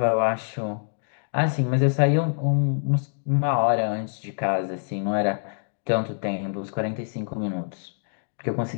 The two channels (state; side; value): silent; right; digital silence